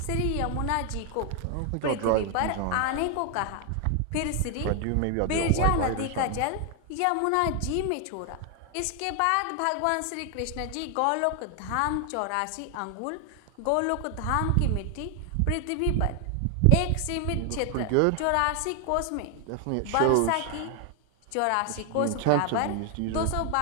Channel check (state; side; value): different; both; correlation 0.00